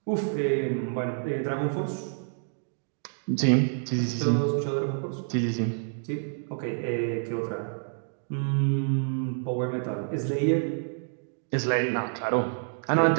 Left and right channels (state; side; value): silent; left; digital silence